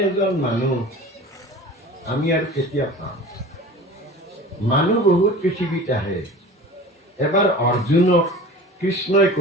এজন মানুহ আমি আৰু কেতিয়া পাম? মানুহ বহুত পৃথিৱীত আহে। এবাৰ অৰ্জুনক কৃষ্ণই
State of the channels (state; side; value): normal; both; correlation 0.38